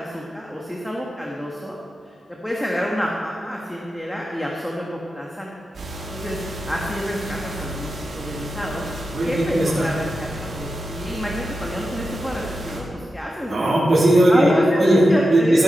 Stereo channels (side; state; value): both; normal; correlation 0.90